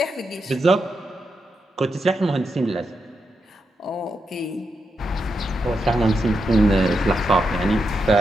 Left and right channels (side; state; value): both; normal; correlation 0.85